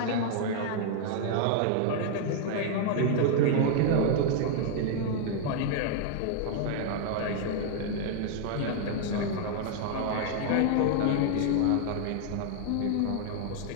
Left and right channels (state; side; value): different; both; correlation 0.00